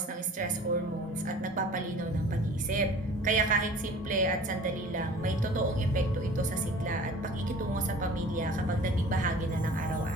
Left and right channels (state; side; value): normal; both; correlation 0.44